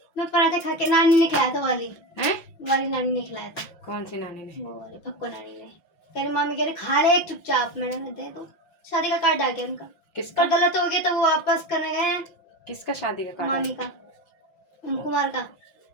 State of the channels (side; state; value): right; late; 5.8 ms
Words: मैं पराठे खा के, नानी ने खिलाया था वाली हैं? वाली नानी ने खिलाया था। कौन सी नानी ने? वो वाली पक्को नानी ने। कह रही मामी कह रही खा ले एक चुपचाप। मैंने दे दो, शादी का कार्ड आ गया उनका। किसका? पर गलत हो गया तो वो वापस करने गए हैं। किसका शादी का कार्ड? मामी का, कुमार का।